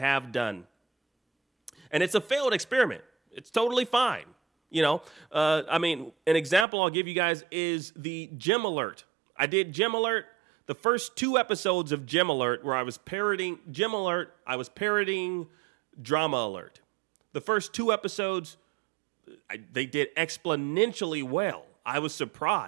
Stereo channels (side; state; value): left; drops out; at 6.7 s